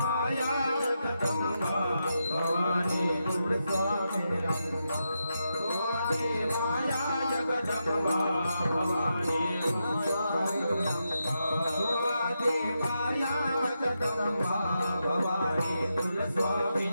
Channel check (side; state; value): both; inverted; correlation -0.85